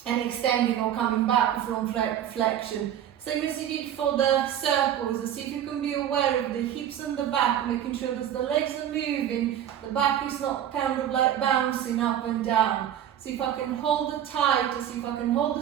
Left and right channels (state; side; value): quieter; left; 10.5 dB